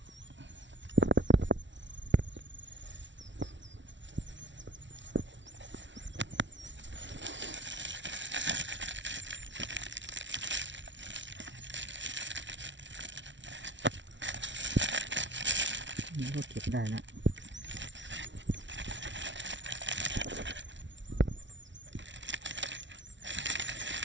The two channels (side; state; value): left; late; 0.54 ms